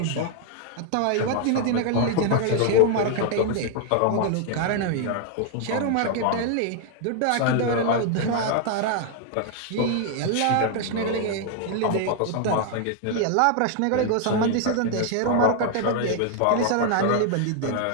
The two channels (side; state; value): both; different; correlation 0.00